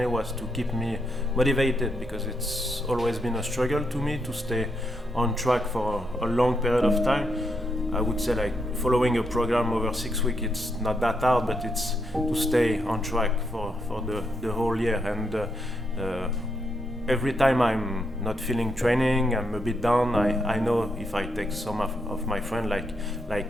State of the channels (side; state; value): both; normal; correlation 0.80